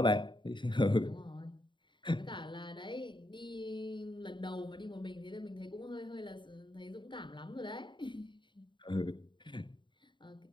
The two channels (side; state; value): right; late; 0.23 ms